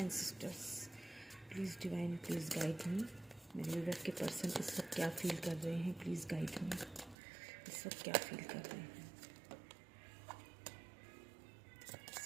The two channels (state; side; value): drops out; left; at 7.2 s